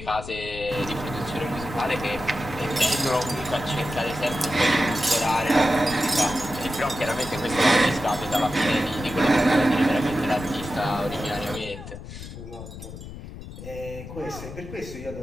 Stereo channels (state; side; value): noise; left; rumble, 12 dB below the sound